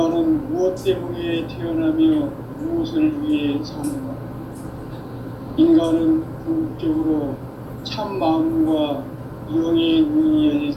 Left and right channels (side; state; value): both; identical; correlation 1.00